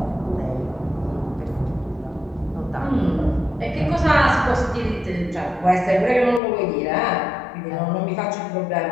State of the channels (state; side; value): drops out; right; at 6.4 s